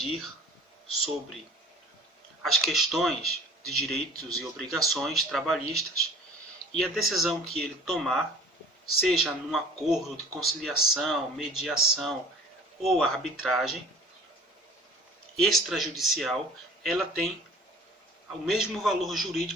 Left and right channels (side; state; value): both; normal; correlation 0.47